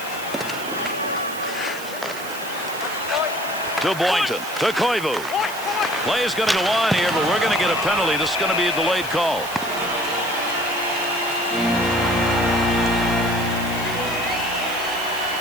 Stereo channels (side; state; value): right; noise; hiss, 13 dB below the sound